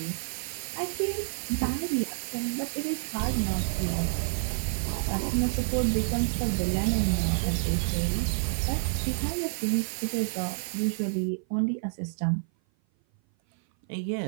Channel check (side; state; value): left; silent; 56 dB below the other